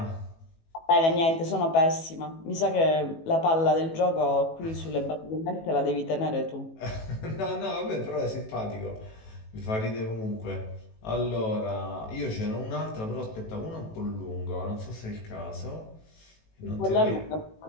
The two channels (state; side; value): late; right; 18 ms